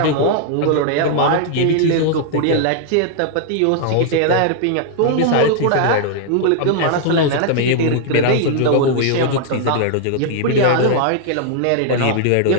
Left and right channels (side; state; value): both; different; correlation -0.01